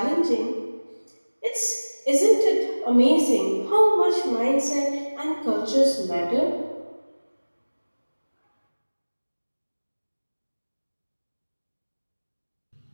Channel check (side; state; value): both; inverted; correlation -1.00